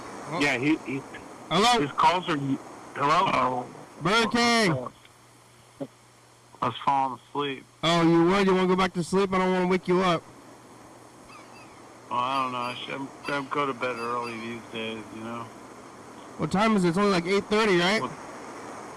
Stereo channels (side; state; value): both; identical; correlation 1.00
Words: Oh. Yeah, he. Hello. His calls are. Hello. Oh. Burger King. I was falling asleep. Oh, you would? You want to go back to sleep? I don't want to wake you up. Well, I don't know. I should go to bed early these days, you know? What time is it? It's only like 8:30, right?